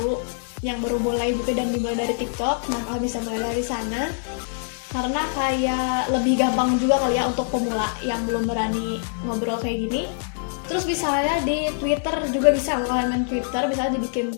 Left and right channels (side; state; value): right; silent; digital silence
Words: yang baru mulai gitu dan dimulai dari TikTok. Nah, kalian bisa mulai dari sana karena kayak lebih gampang juga kali ya untuk pemula yang belum berani ngobrol kayak gini. Terus misalnya di Twitter juga bisa, kalau kalian main Twitter bisa dibikin